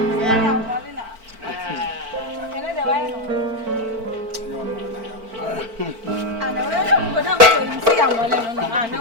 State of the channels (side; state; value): left; late; 4.5 ms